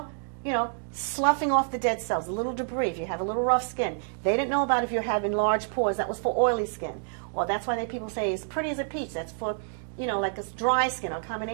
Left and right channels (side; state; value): left; silent; digital silence